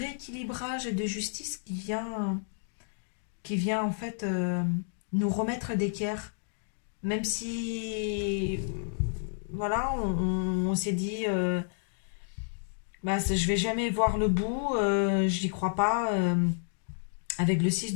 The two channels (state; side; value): silent; right; digital silence